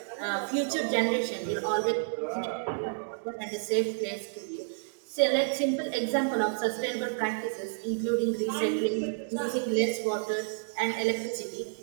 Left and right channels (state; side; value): silent; left; digital silence